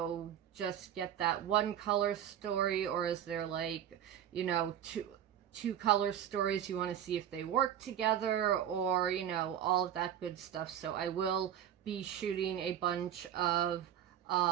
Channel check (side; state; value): left; quieter; 10.1 dB